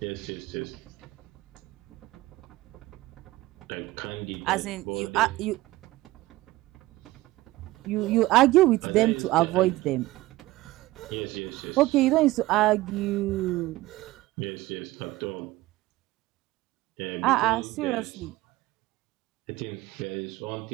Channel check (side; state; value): left; quieter; 18.3 dB